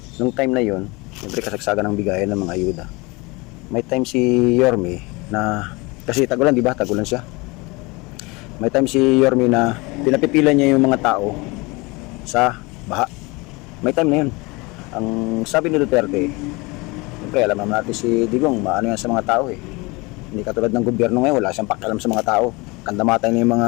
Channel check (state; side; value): quieter; right; 25.4 dB